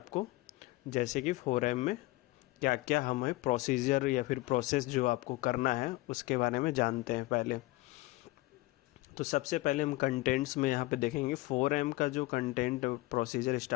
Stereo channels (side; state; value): right; quieter; 20.1 dB